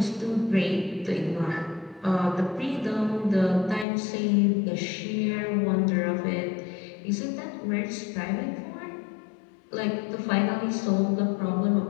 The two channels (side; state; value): right; drops out; at 3.9 s